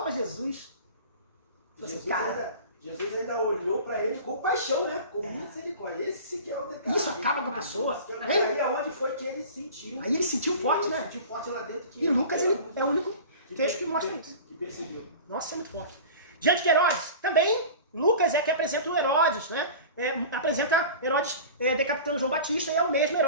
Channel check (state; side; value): inverted; both; correlation -0.37